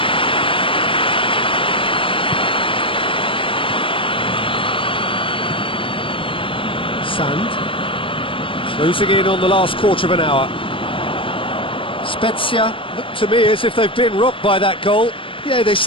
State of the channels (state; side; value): late; right; 0.25 ms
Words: Sand closing in on the last quarter of an hour. Spezia look to me as if they've been rocked by that goal. Yeah, they